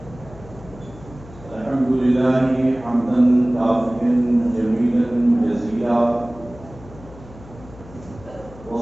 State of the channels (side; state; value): left; noise; hum, 19 dB below the sound